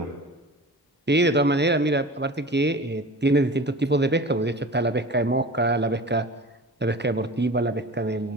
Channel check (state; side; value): normal; both; correlation 0.36